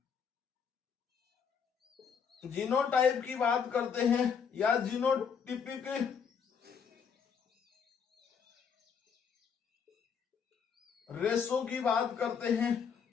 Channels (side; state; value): right; quieter; 6.7 dB